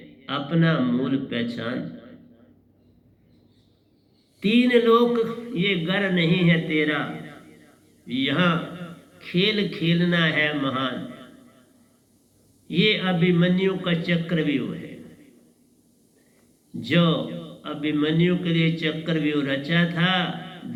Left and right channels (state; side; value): identical; both; correlation 1.00